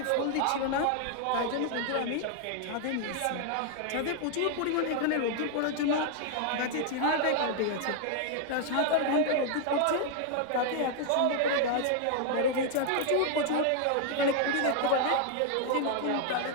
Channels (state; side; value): different; both; correlation 0.00